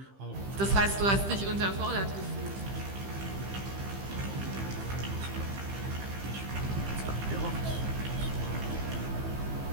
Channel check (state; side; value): late; left; 15 ms